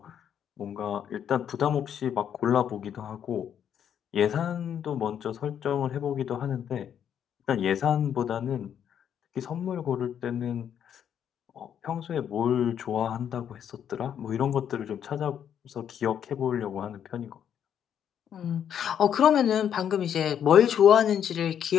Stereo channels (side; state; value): right; quieter; 9.0 dB